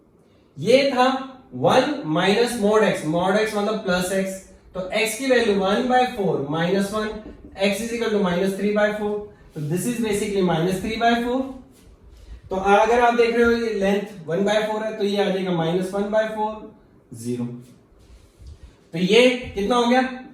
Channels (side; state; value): both; identical; correlation 1.00